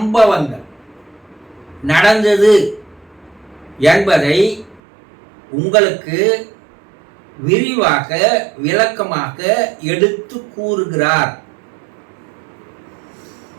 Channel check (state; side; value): drops out; left; at 4.8 s